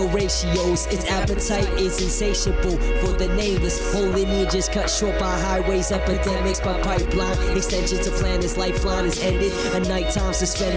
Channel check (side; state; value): both; identical; correlation 1.00